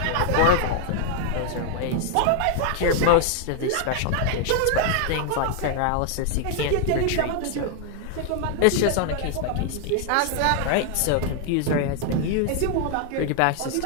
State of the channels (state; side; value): different; both; correlation 0.00